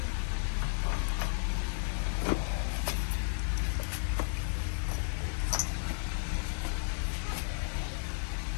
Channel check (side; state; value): right; silent; 55 dB below the other